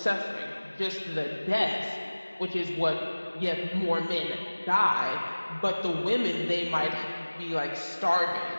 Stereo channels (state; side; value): inverted; both; correlation -1.00